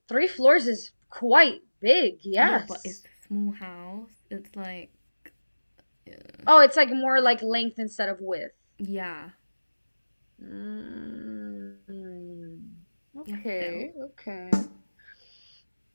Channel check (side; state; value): both; inverted; correlation -1.00